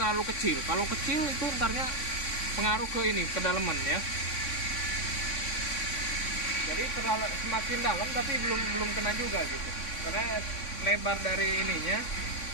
kecil. Kalau kecil itu ntarnya pengaruh ke ini, kedalaman ya. Jadi semakin dalam tapi belum kena juga gitu, karena lebar dari ininya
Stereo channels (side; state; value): right; late; 3.5 ms